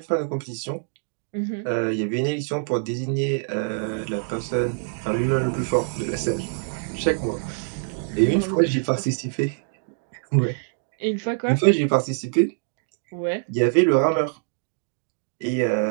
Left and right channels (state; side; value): silent; left; digital silence